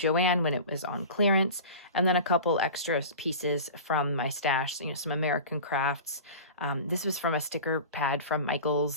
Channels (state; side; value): inverted; both; correlation -0.35